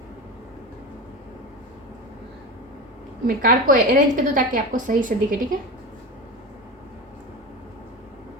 मैं कार्ड को अरेंज कर दूं ताकि आपको सही से दिखे, ठीक है।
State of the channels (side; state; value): both; normal; correlation 0.24